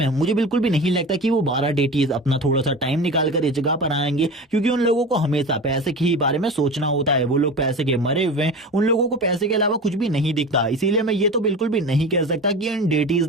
मुझे बिल्कुल भी नहीं लगता कि वो 12 डेटीज अपना थोड़ा सा टाइम निकाल कर इस जगह पर आएंगे, क्योंकि उन लोगों को हमेशा पैसे के ही बारे में सोचना होता है। वो लोग पैसे के मरे हुए हैं, उन लोगों को पैसे के अलावा कुछ भी नहीं दिखता। इसीलिए मैं ये तो बिल्कुल भी नहीं कह सकता कि इन डेटीज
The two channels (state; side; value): normal; both; correlation 0.31